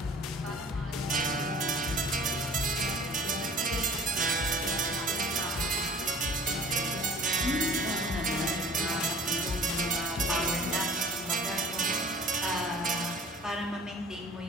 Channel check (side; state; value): both; normal; correlation 0.48